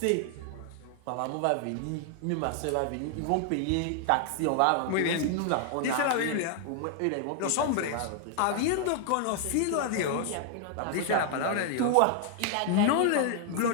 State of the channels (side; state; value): both; different; correlation 0.00